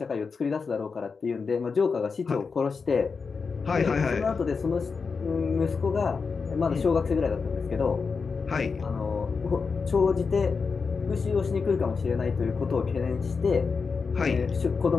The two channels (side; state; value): right; quieter; 5.0 dB